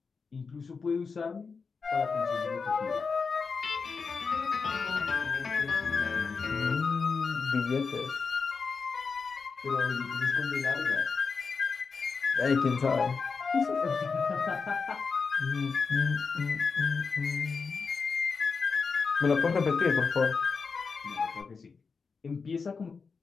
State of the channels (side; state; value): right; quieter; 5.0 dB